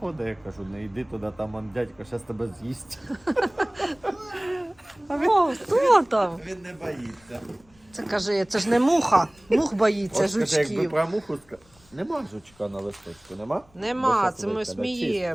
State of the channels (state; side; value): noise; left; rumble, 30 dB below the sound